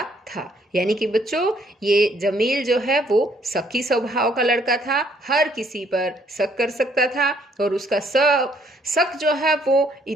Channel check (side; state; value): both; normal; correlation 0.66